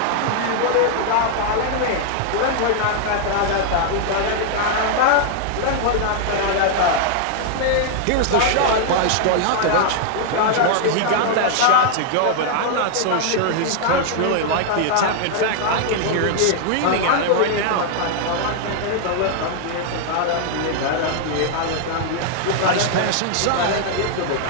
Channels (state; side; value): different; both; correlation 0.00